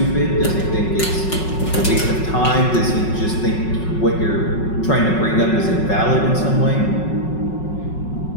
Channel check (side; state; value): right; late; 5.4 ms